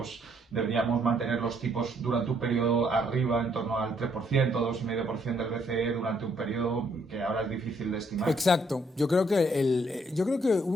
deberíamos mantener los tipos durante un periodo arriba, en torno al 3%, 2,5% del BCE durante un periodo que ahora es difícil de estimar. Exacto. Yo creo que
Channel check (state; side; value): normal; both; correlation 0.70